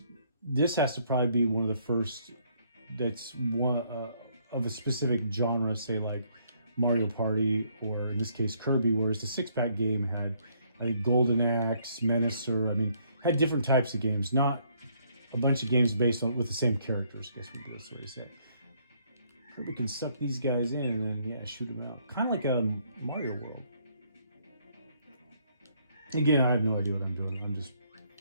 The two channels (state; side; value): inverted; both; correlation -0.68